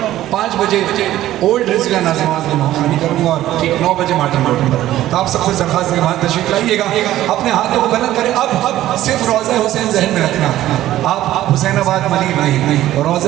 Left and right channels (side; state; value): left; quieter; 14.0 dB